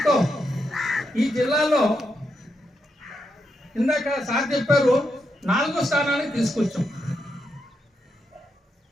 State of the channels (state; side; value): normal; both; correlation 0.83